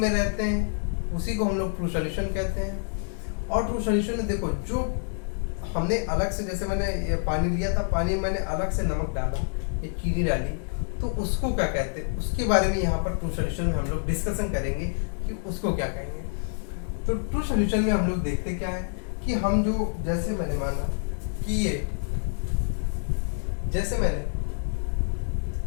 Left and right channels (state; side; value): silent; right; 60 dB below the other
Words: रहते हैं, उसी को हम लोग ट्रू सॉल्यूशन कहते हैं। और ट्रू सॉल्यूशन में देखो, जो हमने अलग से, जैसे मैंने ये पानी लिया था, पानी में मैंने अलग से नमक डाला, ये चीनी डाली, तो उसको क्या कहते हैं, उसके बारे में यहाँ पर ट्रू सॉल्यूशन में हम लोग डिस्कशन करेंगे कि उसको क्या कहेंगे। तो ट्रू सॉल्यूशन में हम लोग देखते क्या है कि हम जो, जैसे मैंने माना कि ये, जैसे मैंने